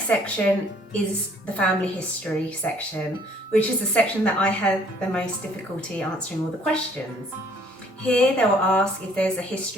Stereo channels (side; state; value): both; normal; correlation 0.60